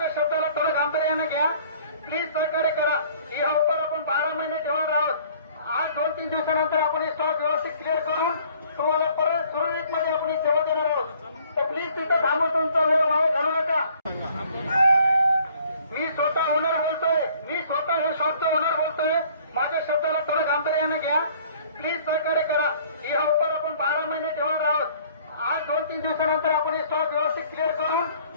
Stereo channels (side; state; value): both; inverted; correlation -0.56